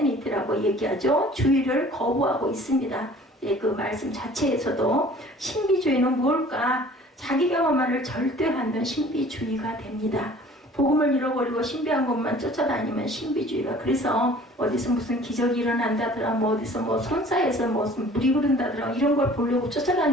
얘기하죠. 주의를 거부하고 있습니다. 예, 그 말씀 자체에서도 신비주의는 뭘까? 자기 경험만을 절대하면 신비주의가 됩니다. 복음을 잃어버리고 신비한 것만 쫓아다니면 신비주의가. 그래서 어디서 무슨 기적이 일어난다더라, 뭐 어디서 뭐 손사에서 무슨 물이 흐른다더라, 이런 걸 보려고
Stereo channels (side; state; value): both; normal; correlation 0.50